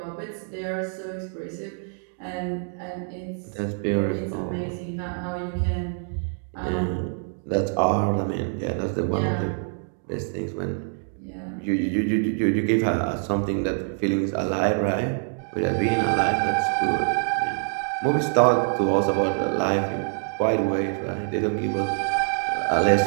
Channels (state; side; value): silent; left; 58 dB below the other